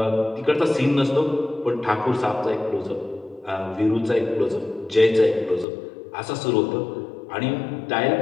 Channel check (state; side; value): drops out; right; at 5.7 s